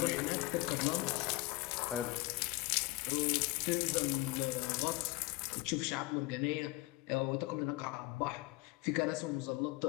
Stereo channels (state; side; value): quieter; right; 21.6 dB